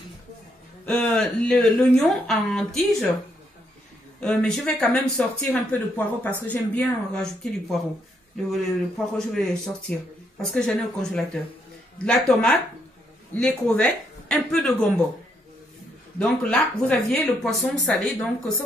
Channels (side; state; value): both; normal; correlation 0.75